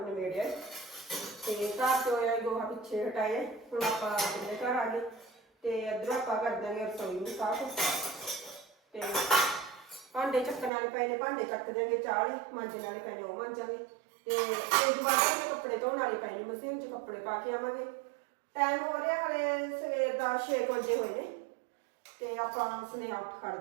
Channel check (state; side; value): drops out; left; at 10.7 s